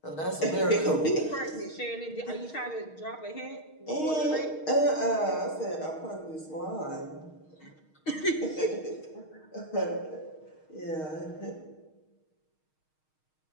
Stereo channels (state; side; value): late; right; 6.4 ms